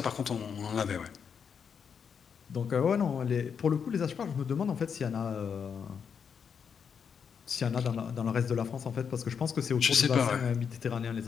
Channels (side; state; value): right; quieter; 6.9 dB